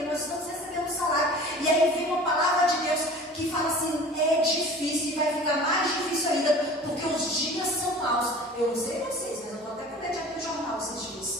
nós estamos recebendo salário. E aí vem uma palavra de Deus que fala assim, é difícil e vai ficar mais difícil ainda, porque os dias são maus. Eu não sei vocês, mas eu estou até com medo de abrir o jornal esses dias.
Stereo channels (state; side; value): normal; both; correlation 0.42